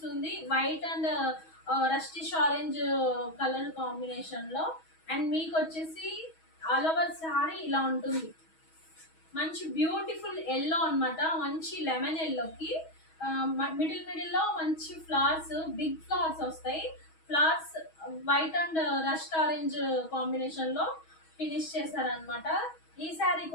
white and rustish orange colour combination లో. అండ్ మీకు వచ్చేసి ఆల్ ఓవర్ శారీ ఇలా ఉంటుంది. మంచి బ్యూటిఫుల్ ఎల్లో అనమాట. మంచి లెమన్ ఎల్లోకి మిడిల్ లో మంచి ఫ్లవర్స్, బిగ్ ఫ్లవర్స్ వస్తాయి. Flowers white and rust orange combination లో ఫినిష్ చేశారనమాట. ఈ శారీ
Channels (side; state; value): right; late; 6.2 ms